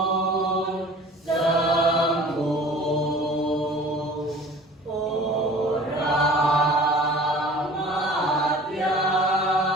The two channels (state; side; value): normal; both; correlation 0.45